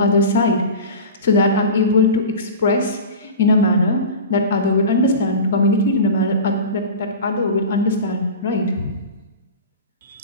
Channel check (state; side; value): inverted; both; correlation -0.32